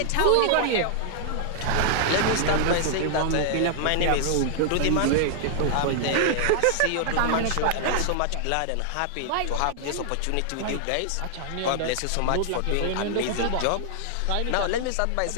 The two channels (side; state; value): both; different; correlation 0.00